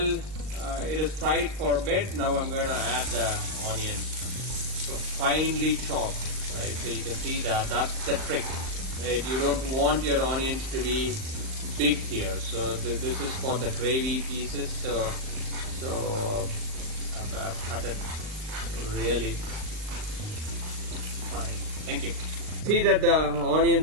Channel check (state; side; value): late; left; 38 ms